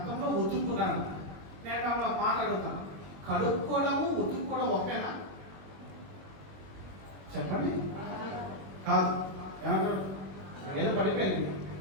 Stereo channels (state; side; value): late; left; 21 ms